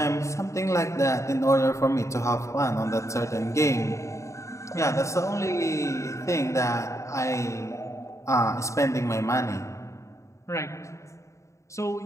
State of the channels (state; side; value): late; right; 0.14 ms